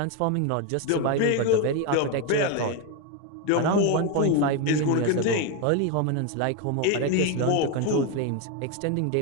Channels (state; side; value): different; both; correlation 0.02